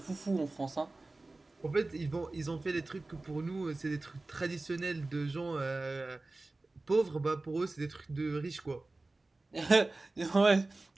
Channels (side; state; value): left; quieter; 3.1 dB